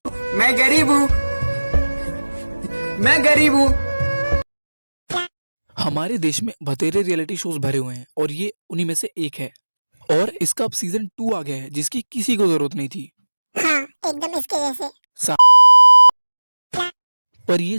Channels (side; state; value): both; inverted; correlation -1.00